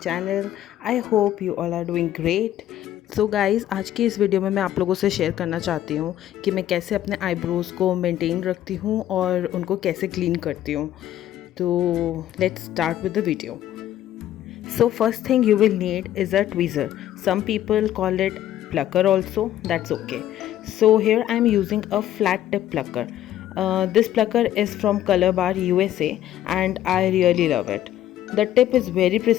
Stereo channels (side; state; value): right; quieter; 12.3 dB